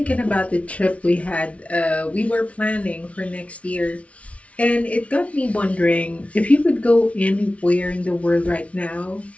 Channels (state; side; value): late; right; 0.064 ms